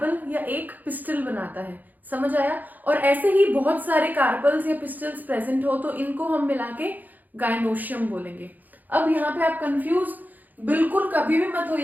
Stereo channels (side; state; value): left; late; 0.083 ms